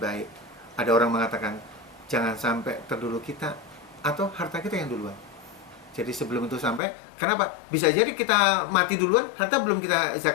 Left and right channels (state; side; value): drops out; right; at 6.8 s